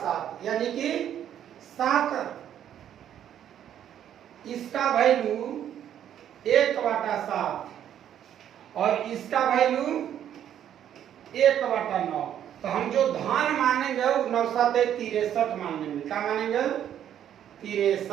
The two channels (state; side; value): quieter; left; 10.2 dB